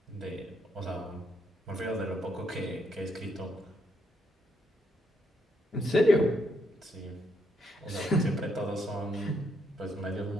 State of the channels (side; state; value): both; normal; correlation 0.75